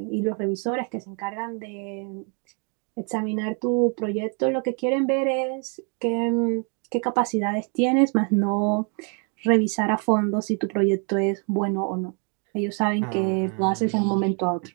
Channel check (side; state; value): left; quieter; 38.2 dB